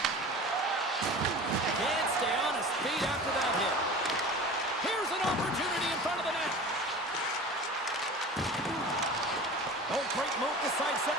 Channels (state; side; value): normal; both; correlation 0.37